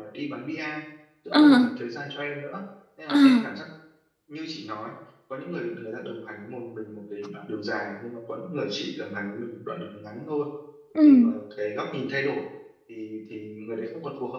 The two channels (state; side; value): identical; both; correlation 1.00